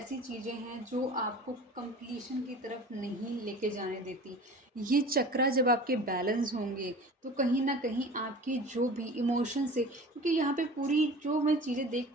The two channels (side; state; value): both; normal; correlation 0.39